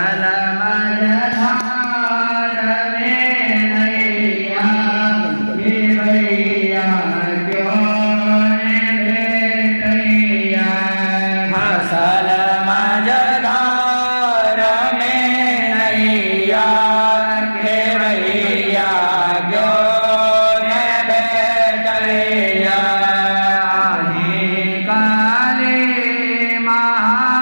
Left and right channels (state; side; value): inverted; both; correlation -1.00